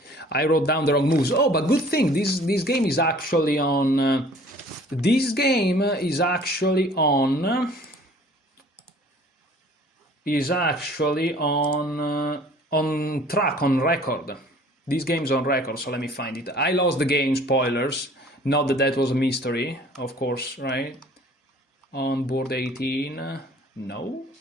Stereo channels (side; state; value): both; normal; correlation 0.51